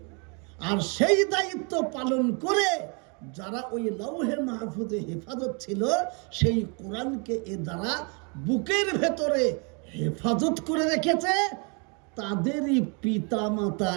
আর সেই দায়িত্ব পালন করে যারা ওই লৌহে মাহফুজে হেফাজত ছিল, সেই কোরআনকে এ দ্বারা বুকের ভেতরে হেফাজত করে রেখেছে, তাদেরই পিতা মাতা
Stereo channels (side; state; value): left; quieter; 34.4 dB